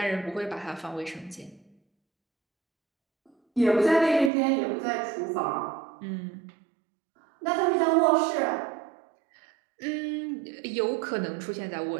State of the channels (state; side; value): drops out; left; at 4.3 s